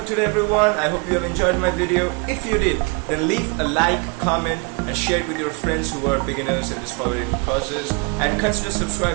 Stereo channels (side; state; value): left; quieter; 31.3 dB